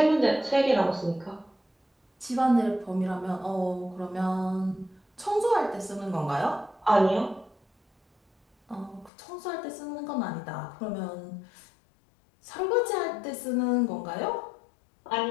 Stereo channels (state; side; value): drops out; right; at 9.1 s